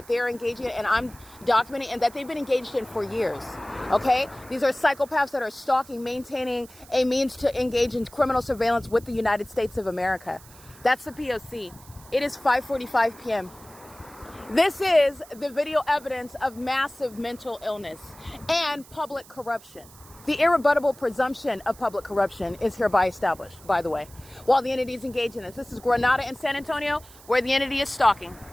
they're engaging in, and I'm documenting, and that they've been engaged in for years. Okay? These are psychopaths that are stalking, maintaining a means to engage in criminal surveillance with the United States of America. That's the P.O.C. It is 5:45 p.m. This is the video evidence of massive mental illness and public corruption. The irrebuttable presumption of public corruption is hereby established, by the way, while the entity is engaged in this. This is Grenada and San Antonio, where the entity is stalking.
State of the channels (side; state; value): right; noise; hiss, 22 dB below the sound